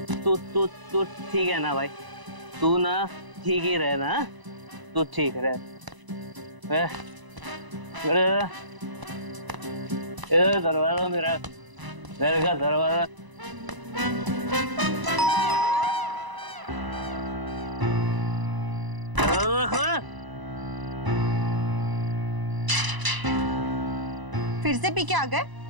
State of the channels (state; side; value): late; left; 1.0 ms